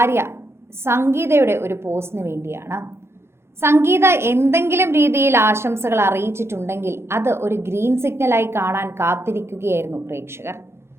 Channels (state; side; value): late; left; 0.12 ms